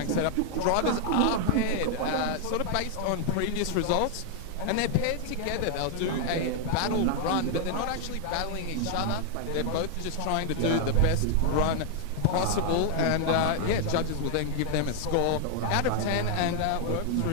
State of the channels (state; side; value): different; both; correlation 0.00